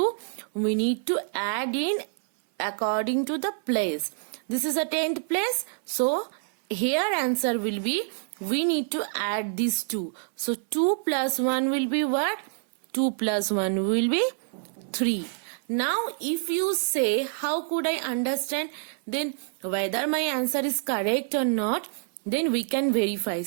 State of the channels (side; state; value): left; silent; 60 dB below the other